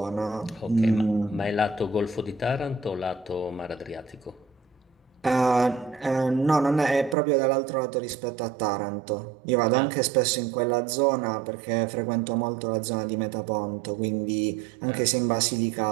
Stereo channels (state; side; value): drops out; left; at 7.2 s